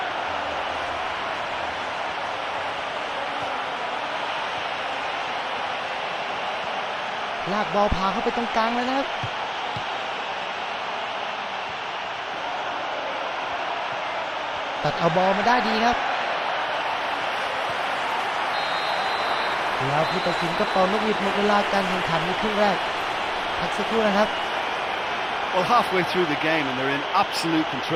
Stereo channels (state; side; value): identical; both; correlation 1.00